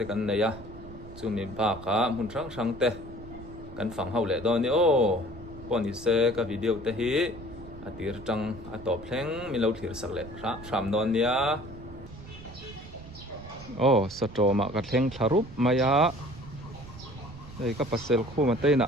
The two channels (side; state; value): right; noise; rumble, 16 dB below the sound